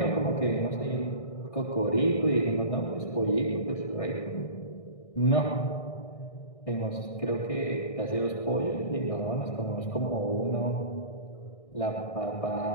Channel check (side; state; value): right; late; 1.6 ms